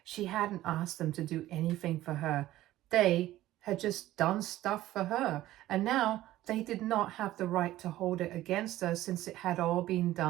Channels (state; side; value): quieter; left; 15.1 dB